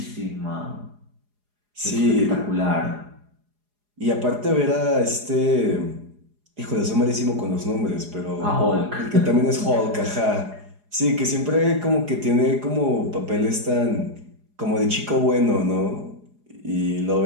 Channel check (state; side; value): late; left; 4.8 ms